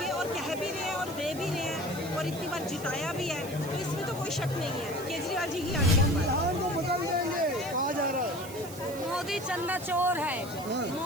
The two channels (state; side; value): noise; right; hiss, 15 dB below the sound